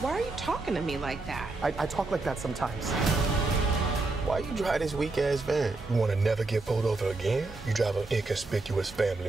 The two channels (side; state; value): left; quieter; 3.4 dB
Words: Why are you talking to me like that? I talk like that sometimes. Why you drive this weak-ass van? You want to never get pulled over again? You drive an inconspicuous family